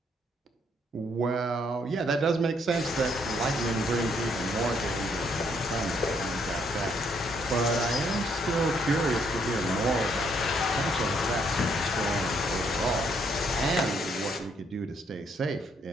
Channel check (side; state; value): both; normal; correlation 0.70